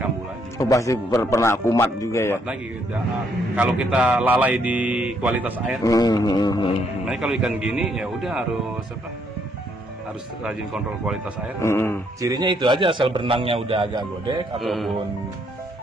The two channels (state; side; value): normal; both; correlation 0.71